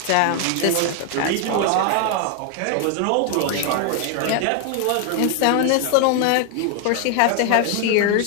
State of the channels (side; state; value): both; different; correlation 0.01